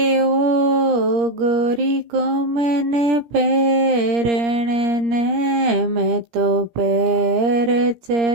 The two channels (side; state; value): left; late; 17 ms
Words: गोरी को मैंने पैरने ने मैं तो पैर